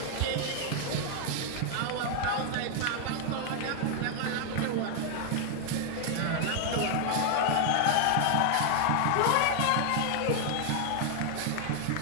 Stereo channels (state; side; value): different; both; correlation 0.00